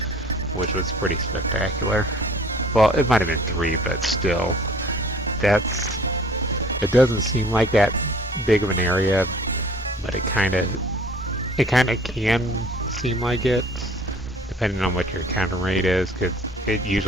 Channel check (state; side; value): normal; both; correlation 0.52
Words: which was pretty spectacular. Well, it might have been 3, but still, it doesn't seem like that big of an area, but it kind of can seem like it, depending on what your encounter rate is, because it